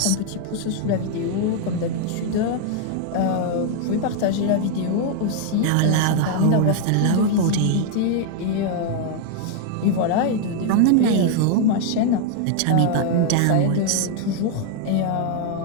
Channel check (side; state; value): both; different; correlation 0.00